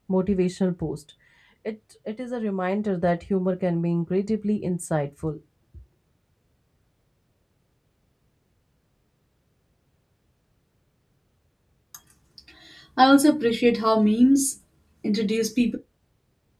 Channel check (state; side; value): identical; both; correlation 1.00